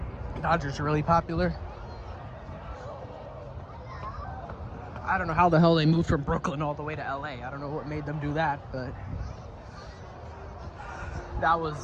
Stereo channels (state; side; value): identical; both; correlation 1.00